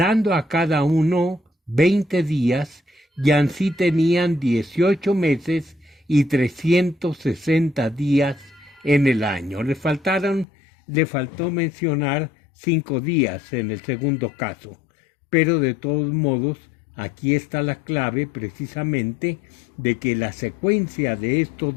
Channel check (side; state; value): right; drops out; at 10.5 s